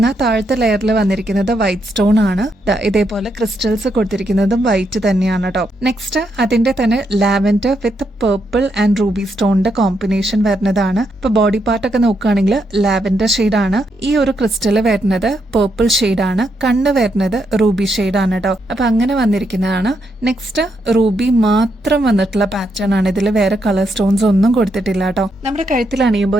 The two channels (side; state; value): both; normal; correlation 0.79